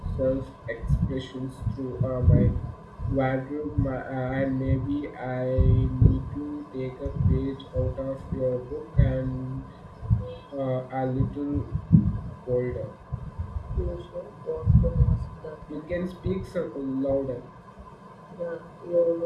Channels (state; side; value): identical; both; correlation 1.00